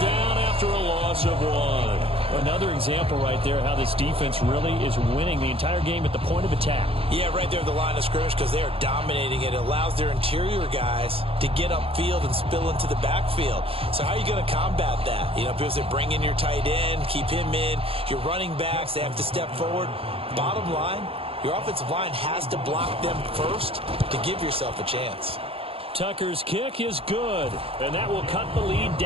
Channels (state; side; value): late; left; 0.27 ms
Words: down after a loss of 1. Another example right there how this defense really is winning the entire game at the point of attack. Yeah, right there at the line of scrimmage because they are dominating it. It allows their interior guys to get upfield and spill into the backfield. So how are you going to combat that? You know, because they bring in your tight end, keep him in. Your running backs, they have to step forward. Bottom line, your offensive line has to block them first to give yourself a chance. Tucker's kick is good, and that will cut the lead